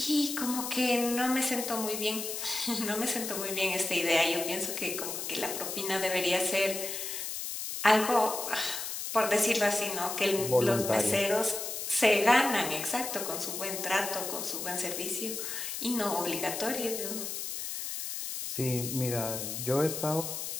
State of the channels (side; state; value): left; noise; hiss, 5 dB below the sound